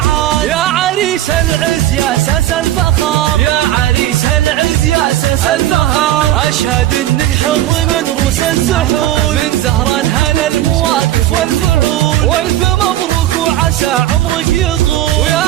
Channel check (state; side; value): quieter; left; 13.3 dB